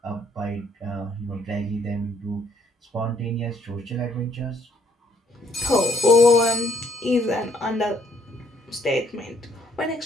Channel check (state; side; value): normal; both; correlation 0.65